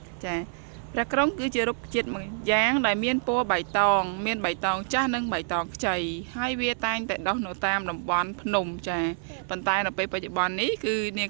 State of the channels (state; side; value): silent; left; digital silence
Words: ចាប្រេះក្រុងគឺជារុក្ខជាតិមួយយ៉ាងដែលមានពណ៌បៃតងមានបៃតងចាស់និងបៃតងខ្ចីហើយវាតែងតែដុះនៅតាមតំបន់ភ្នំចាប៉ុន្តែនៅពេលបច្ចុប្បន្ននេះគឺនាង